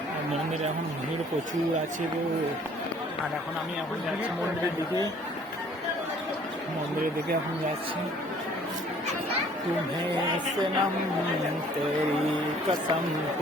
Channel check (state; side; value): normal; both; correlation 0.56